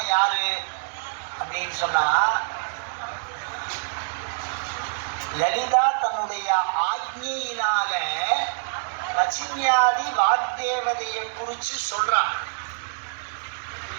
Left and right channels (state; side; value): silent; left; digital silence